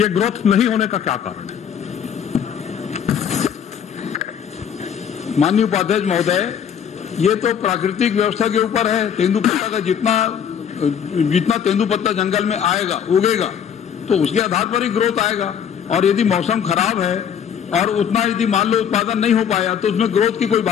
ग्रोथ नहीं होने का क्या कारण है? माननीय उपाध्यक्ष महोदय, ये तो प्राकृतिक व्यवस्था के ऊपर है। तेंदुपत्ता का जितना तेंदुपत्ता जंगल में आएगा, उगेगा, तो उसके आधार पर ही ग्रोथ आएगा। और यदि मौसम खराब है और उतना यदि मान लो उत्पादन नहीं हो पाया, तो उसमें ग्रोथ की कोई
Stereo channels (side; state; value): right; quieter; 8.2 dB